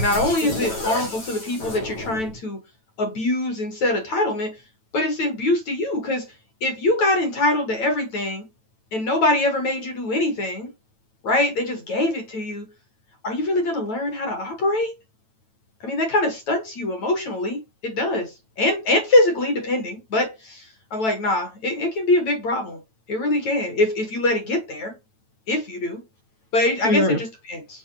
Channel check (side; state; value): right; late; 9.1 ms